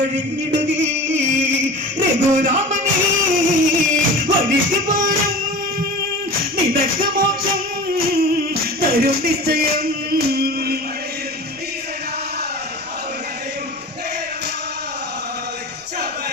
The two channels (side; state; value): right; noise; rumble, 28 dB below the sound